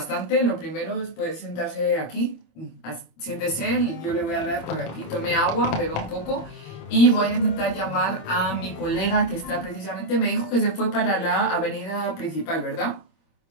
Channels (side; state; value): right; late; 25 ms